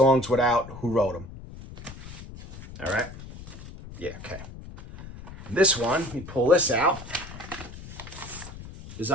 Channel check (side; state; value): left; noise; rumble, 14 dB below the sound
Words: without who wrote them. All right? Yeah, okay. This one, let me pull this out, is